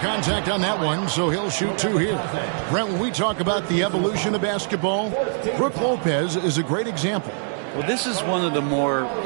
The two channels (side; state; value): left; silent; 63 dB below the other